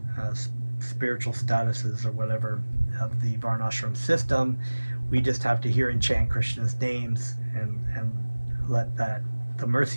spiritual statuses or whatever of the Varnashram system. We just have to hear and chant Krishna's names and let the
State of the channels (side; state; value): both; inverted; correlation -1.00